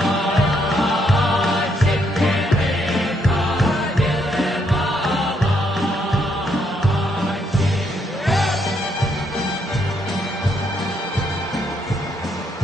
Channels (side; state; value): both; normal; correlation 0.74